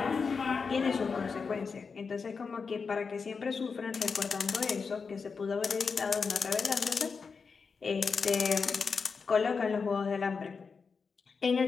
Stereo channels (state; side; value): quieter; right; 5.2 dB